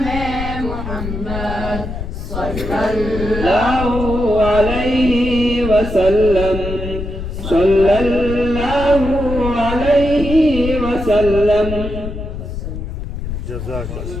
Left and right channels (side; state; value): left; noise; rumble, 6 dB below the sound